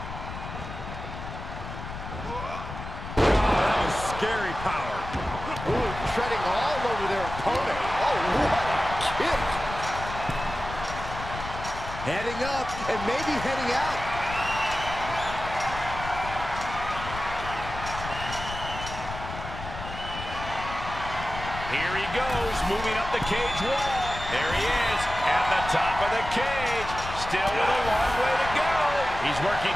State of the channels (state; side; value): noise; left; rumble, 9 dB below the sound